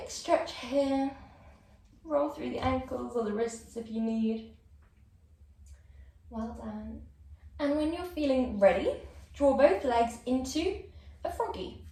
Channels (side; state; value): both; identical; correlation 1.00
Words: stretch here. Roll through the ankles or the wrists if you need. Well done. And when you're feeling ready, draw both legs into a froggy.